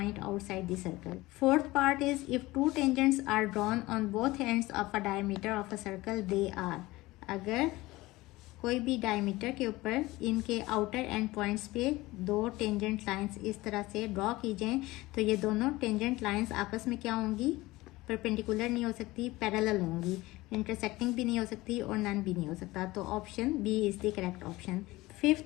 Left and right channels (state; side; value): quieter; right; 19.6 dB